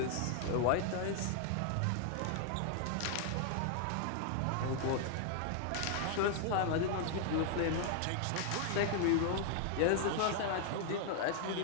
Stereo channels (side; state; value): both; different; correlation 0.00